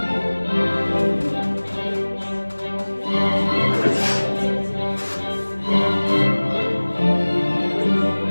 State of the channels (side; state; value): both; inverted; correlation -1.00